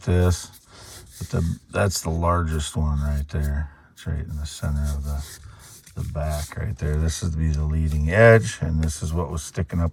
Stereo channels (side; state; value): both; identical; correlation 1.00